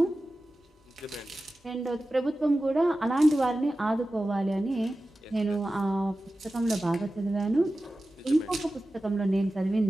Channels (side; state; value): both; normal; correlation 0.95